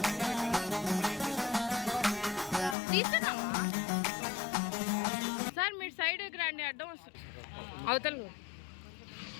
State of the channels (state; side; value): drops out; right; at 2.8 s